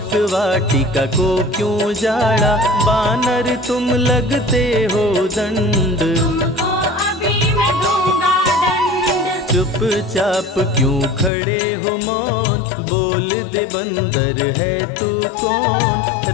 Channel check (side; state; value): right; drops out; at 11.3 s